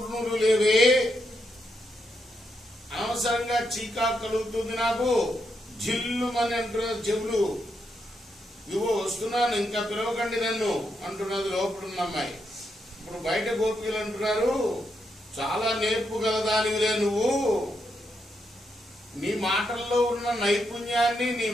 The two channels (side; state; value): both; normal; correlation 0.81